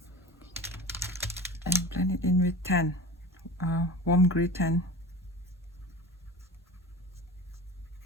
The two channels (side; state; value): both; normal; correlation 0.35